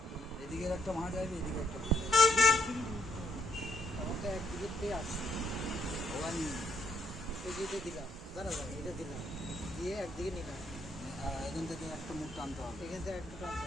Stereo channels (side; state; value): both; normal; correlation 0.73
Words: এদিকের একটা মাছ আসবে, এদিকে একটা মাছ আমার তো একদিকে পেয়ে আসছে, ওখান এই যে এটা দিলাম, দাঁড়া এটা দিলাম, দিয়ে একদিকে নিলাম, এখান থেকে একটা মুখ টানতে হবে, এখান থেকে একটা টানতে